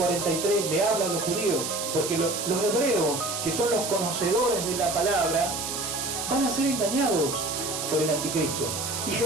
le habla a los judíos, porque los hebreos, que son los conocedores de la palabra, van a ser engañados por el anticristo. Y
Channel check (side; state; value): right; noise; hiss, 4 dB below the sound